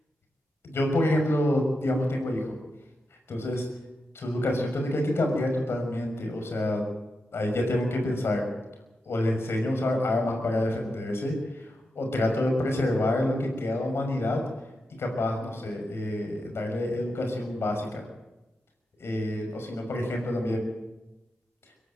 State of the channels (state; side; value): normal; both; correlation 0.87